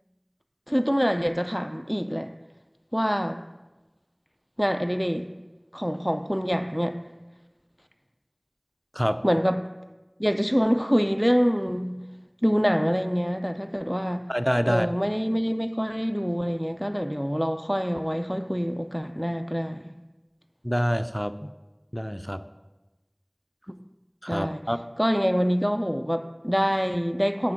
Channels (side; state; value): both; identical; correlation 1.00